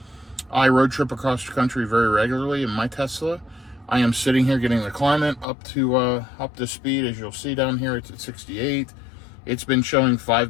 I road trip across the country very regularly in my Tesla. I am sitting here getting the climate up to speed. As you'll see down here, it's at 68. It's been showing 5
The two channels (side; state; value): right; drops out; at 5.5 s